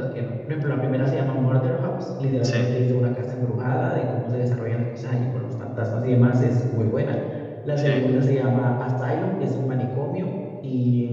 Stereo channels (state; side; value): identical; both; correlation 1.00